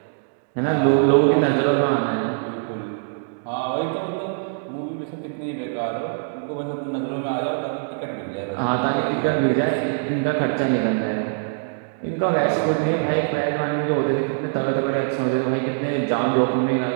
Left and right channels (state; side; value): silent; left; digital silence